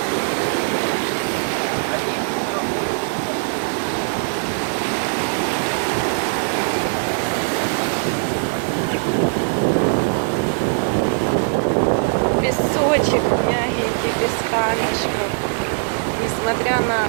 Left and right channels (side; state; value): left; silent; digital silence